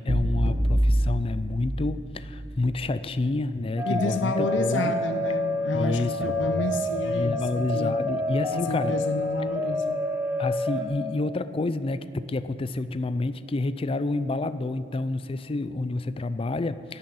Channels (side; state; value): both; normal; correlation 0.74